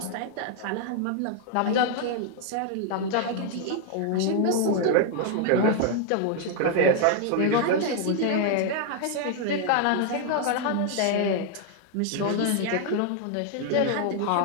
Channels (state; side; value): different; both; correlation 0.00